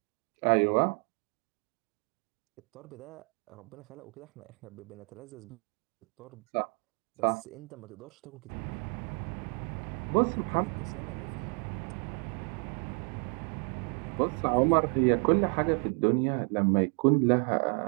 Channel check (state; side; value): quieter; left; 38.7 dB